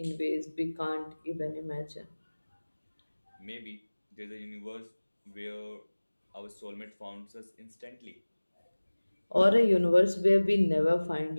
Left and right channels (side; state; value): both; inverted; correlation -1.00